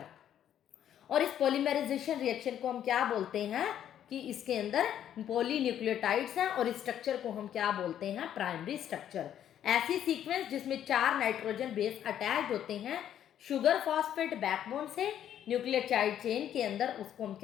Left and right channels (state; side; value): quieter; right; 10.3 dB